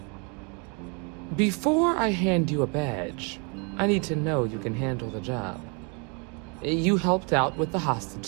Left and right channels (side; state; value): left; quieter; 34.6 dB